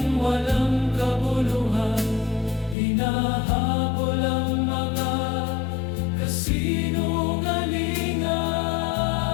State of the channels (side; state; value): right; drops out; at 2.8 s